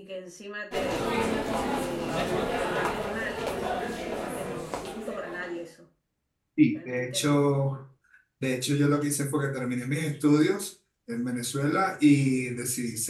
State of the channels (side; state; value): both; identical; correlation 1.00